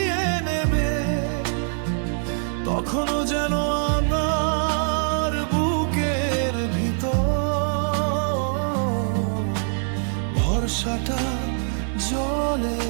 নেবে, তখনও যেন আমার বুকের ভিতর ভরসাটা জ্বলে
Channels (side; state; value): left; silent; digital silence